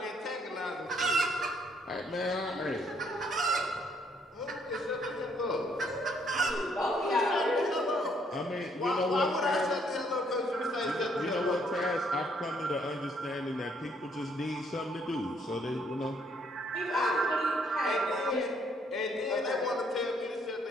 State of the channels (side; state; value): both; normal; correlation 0.68